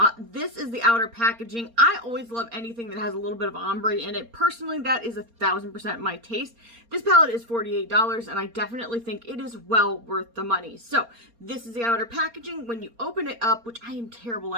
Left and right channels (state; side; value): late; left; 4.3 ms